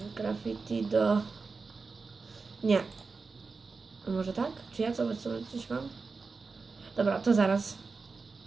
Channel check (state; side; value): quieter; left; 4.4 dB